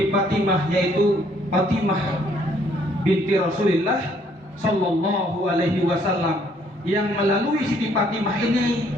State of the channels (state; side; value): normal; both; correlation 0.65